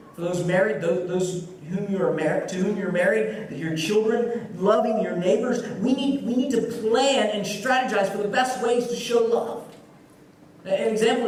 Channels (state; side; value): identical; both; correlation 1.00